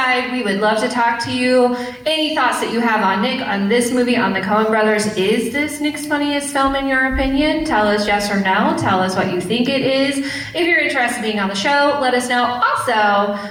We would love to talk to you. Any thoughts that you have on Nick, on this movie, on the Coen brothers? Is this Nick's funniest film in your opinion? Tell us yes or no. Tell us what you think it is. If you're interested in being on the show, let us know.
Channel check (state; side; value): identical; both; correlation 1.00